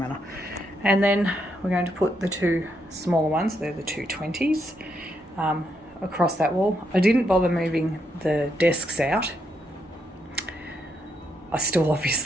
And then we're going to put the two smaller ones, they're the 220s, across that wall. I didn't bother moving the desks out. I still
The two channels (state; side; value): normal; both; correlation 0.78